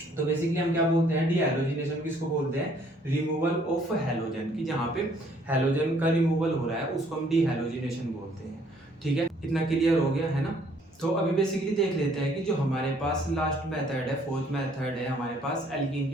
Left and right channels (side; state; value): both; normal; correlation 0.62